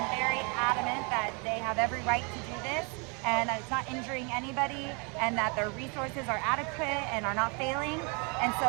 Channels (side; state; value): left; quieter; 32.9 dB